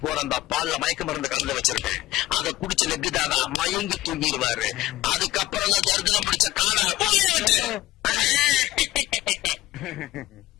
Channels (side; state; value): right; quieter; 16.2 dB